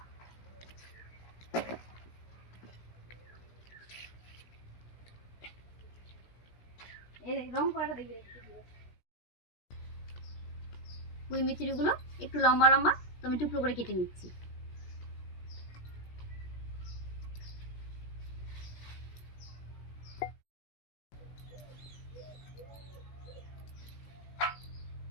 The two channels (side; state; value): right; late; 17 ms